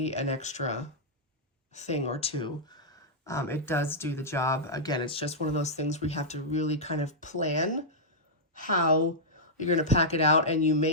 an extra thing or two. It does do the job. Again, it's just one of those things where you have to really kind of plan how you're going to pack it out, and you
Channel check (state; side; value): normal; both; correlation -0.08